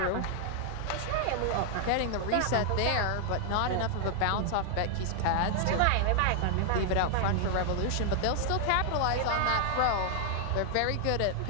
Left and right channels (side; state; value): both; different; correlation 0.00